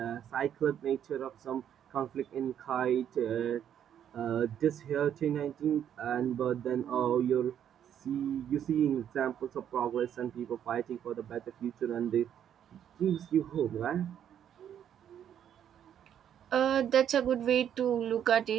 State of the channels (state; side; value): quieter; left; 9.6 dB